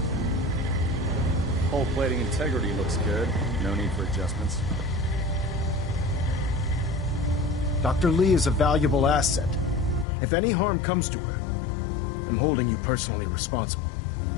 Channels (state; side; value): drops out; right; at 10.1 s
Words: Hull plating integrity looks good. No need for adjustments. Dr. Lee is a valuable asset. If any harm comes to her, I'm holding you personally responsible.